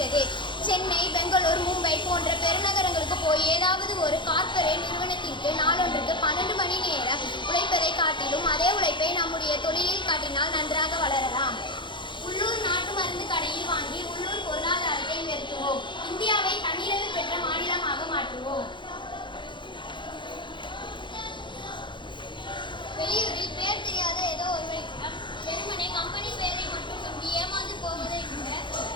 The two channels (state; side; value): late; right; 0.23 ms